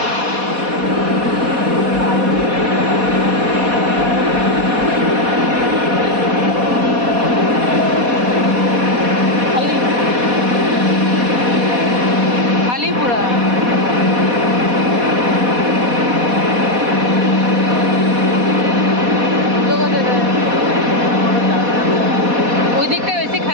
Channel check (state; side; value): late; left; 4.1 ms